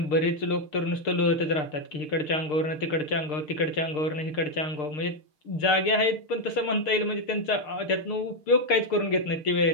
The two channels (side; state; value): right; late; 6.6 ms